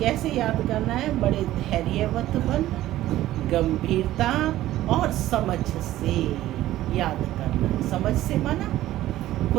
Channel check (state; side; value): quieter; left; 14.6 dB